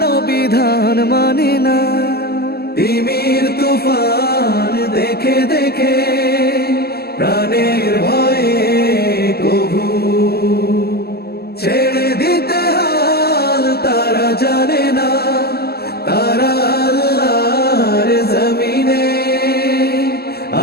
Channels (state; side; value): late; right; 0.46 ms